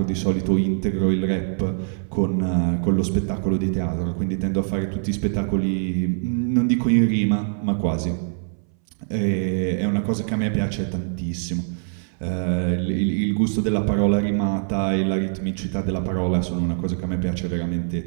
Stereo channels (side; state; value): left; silent; 62 dB below the other